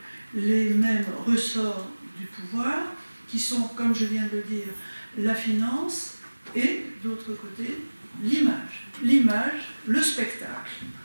les mêmes ressorts du pouvoir, qui sont, comme je viens de le dire, la finance et, d'autre côté, l'image. L'image, le spectacle,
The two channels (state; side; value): inverted; both; correlation -1.00